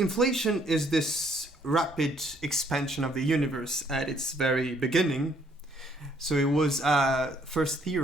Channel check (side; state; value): both; normal; correlation 0.66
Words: is this rapid expansion of the universe at its very beginning. So it was first